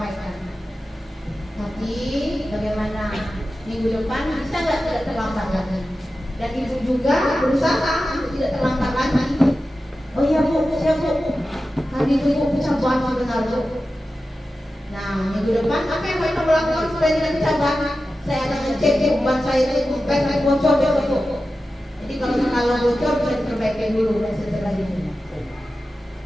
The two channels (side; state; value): both; normal; correlation 0.93